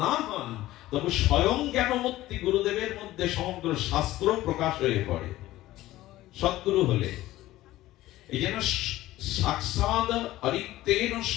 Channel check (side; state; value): right; quieter; 16.0 dB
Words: না হন, তবে স্বয়ং জ্ঞানমূর্তি গুরুদেবের মধ্যে সমগ্র শাস্ত্র প্রকাশ হয়ে পড়ে সদ্গুরু হলে। এই জন্য সাক্ষাৎ অরিক্তেন